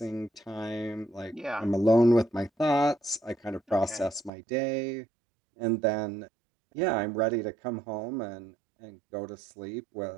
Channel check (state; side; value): drops out; left; at 4.3 s